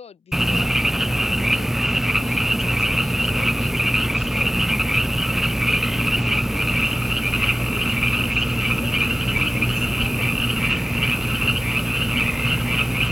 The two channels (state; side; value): normal; both; correlation 0.97